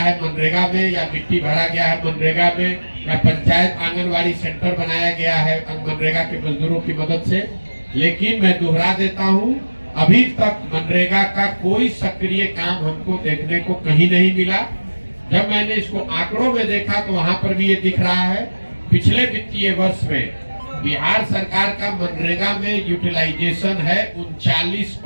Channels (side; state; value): both; inverted; correlation -1.00